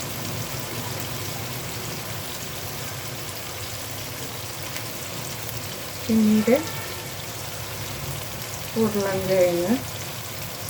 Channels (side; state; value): both; identical; correlation 1.00